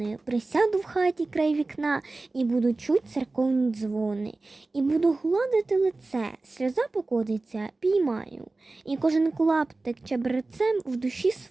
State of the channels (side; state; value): left; quieter; 3.3 dB